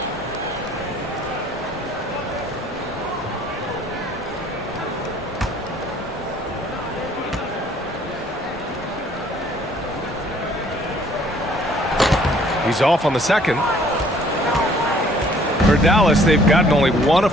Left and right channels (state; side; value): normal; both; correlation 0.58